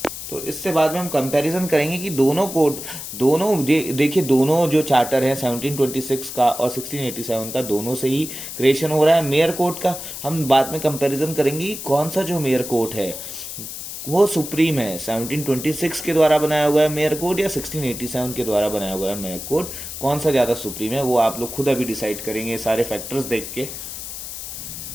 तो इससे बाद में हम कंपैरिजन करेंगे कि देखिए दोनों जो चार्टर हैं 1726 का और 1687 का, दोनों से ही क्रिएशन हो रहा है मेयर कोर्ट का। हम बाद में कंपैरिजन करेंगे कि कौन सा जो मेयर कोर्ट है वो सुप्रीम है, 1726 के द्वारा बनाया हुआ है मेयर कोड या 1687 के द्वारा बनाया हुआ है मेयर कोड, कौन सा ज़्यादा सुप्रीम है, वो आप लोग खुद अभी डिसाइड करेंगे सारे फैक्टर्स देख के।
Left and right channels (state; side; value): noise; left; hiss, 9 dB below the sound